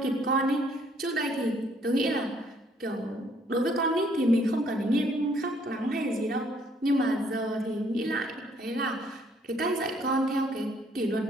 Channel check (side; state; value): both; normal; correlation 0.65